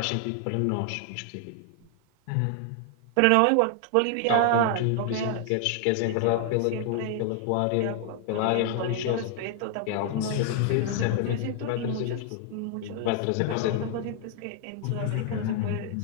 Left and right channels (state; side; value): different; both; correlation 0.00